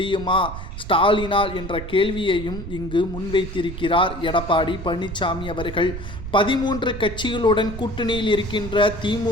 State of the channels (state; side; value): noise; right; rumble, 9 dB below the sound